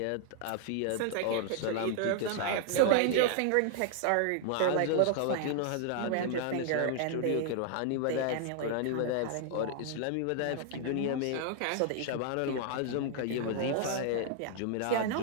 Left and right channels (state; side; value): different; both; correlation 0.00